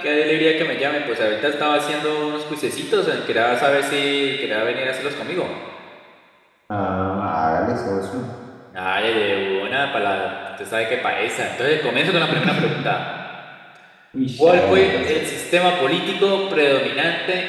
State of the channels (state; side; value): identical; both; correlation 1.00